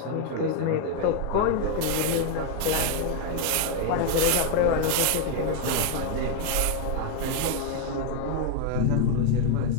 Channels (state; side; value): different; both; correlation 0.01